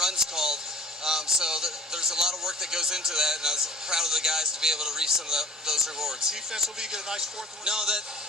called. So there's a lot of work that goes into that, and I was proud of the guys to be able to reach some of those rewards. Defensively, you get a nice 4th one. No,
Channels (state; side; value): normal; both; correlation 0.46